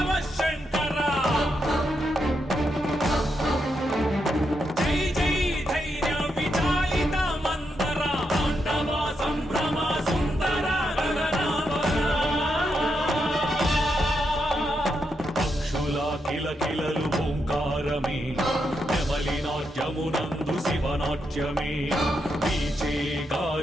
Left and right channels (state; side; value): normal; both; correlation 0.82